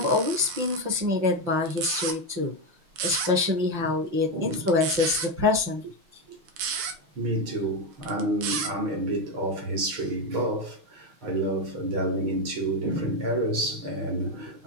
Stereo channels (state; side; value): late; left; 5.8 ms